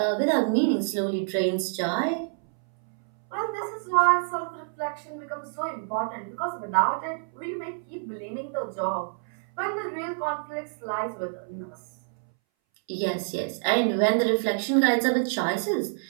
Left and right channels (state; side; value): silent; left; 60 dB below the other